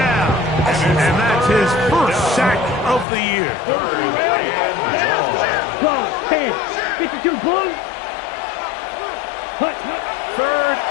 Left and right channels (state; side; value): drops out; right; at 3.1 s